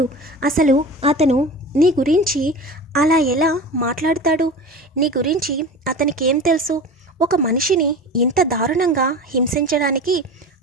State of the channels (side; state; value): both; normal; correlation 0.33